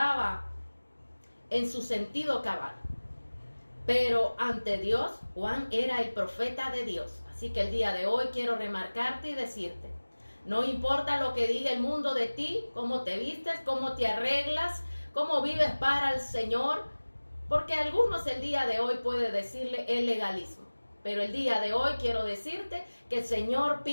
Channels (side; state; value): both; inverted; correlation -1.00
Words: en su sentido cabal. Pero ante Dios, Juan era el profeta de Dios. Así que el día de hoy quiero remarcarte y decirte, no importa lo que diga el mundo de ti, cómo te vistes, cómo te arreglas, cómo vives para el Señor, porque algunos el día de hoy puede decirle el legalismo. Pero el día de hoy quiero decirte que el Señor